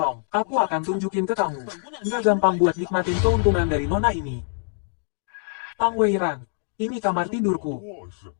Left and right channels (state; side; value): silent; right; digital silence